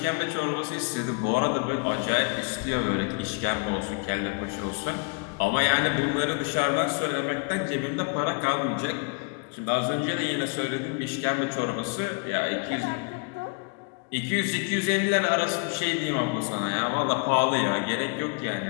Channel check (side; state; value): right; quieter; 33.4 dB